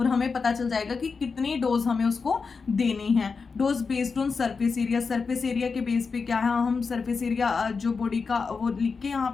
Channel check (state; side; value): quieter; right; 4.9 dB